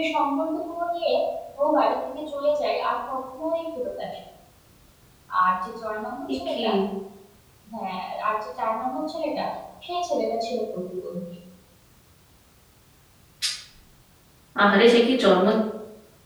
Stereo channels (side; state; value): both; identical; correlation 1.00